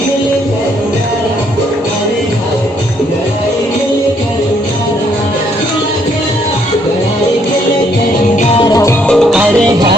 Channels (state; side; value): normal; both; correlation 0.69